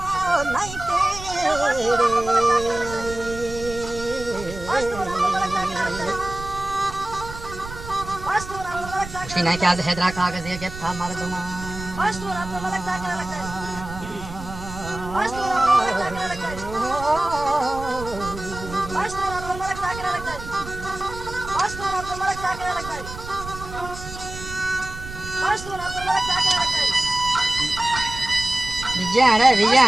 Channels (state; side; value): noise; right; rumble, 12 dB below the sound